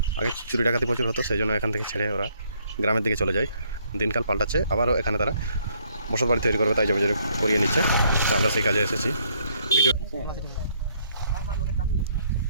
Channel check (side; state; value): both; inverted; correlation -0.68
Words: আগে চুরি ডাকাতি প্রচুর হতো, সেই জন্য এখান থেকে ছেড়ে ওরা গ্রামের দিকে চলে যায়। দিনকাল পাল্টাচ্ছে, আবারও এখানে তারা বসত বাড়ি তৈরি করবে, তাই জমি জমি করিয়ে নিচ্ছে। তো আমরা সেই কাজে এসেছি। ভিডিও